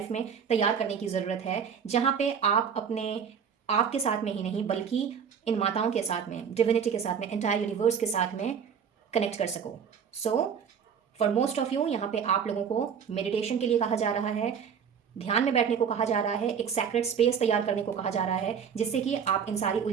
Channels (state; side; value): quieter; left; 7.2 dB